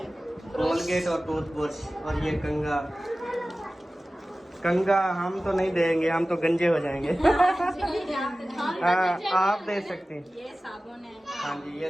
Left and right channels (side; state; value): both; normal; correlation 0.96